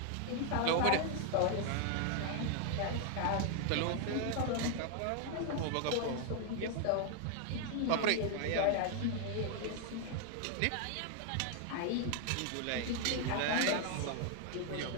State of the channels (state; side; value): different; both; correlation 0.00